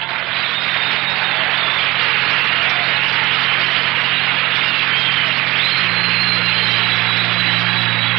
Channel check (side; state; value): left; quieter; 20.1 dB